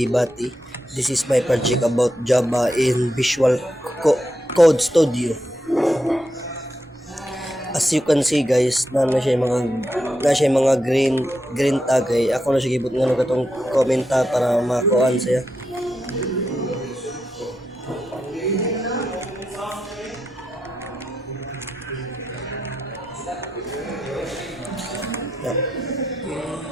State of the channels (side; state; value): both; normal; correlation 0.85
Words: Bati. This is my project about Java in Visual Code Studio. As you can see guys, na siya mga green tag ay ako na siya gibot nga katong komenta para makuan siya.